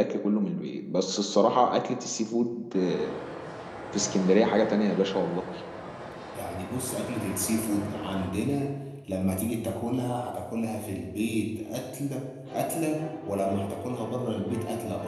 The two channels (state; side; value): identical; both; correlation 1.00